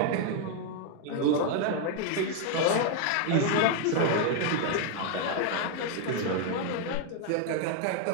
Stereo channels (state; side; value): different; both; correlation 0.01